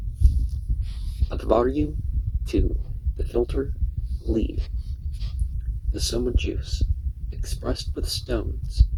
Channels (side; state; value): both; identical; correlation 1.00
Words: Advaryu to the filter lead, the Soma juice, expressed with stones,